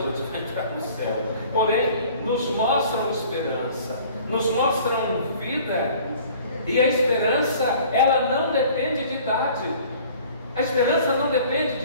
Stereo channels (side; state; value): both; inverted; correlation -0.50